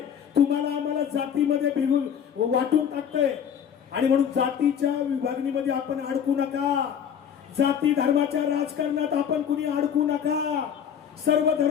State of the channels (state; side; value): quieter; right; 8.2 dB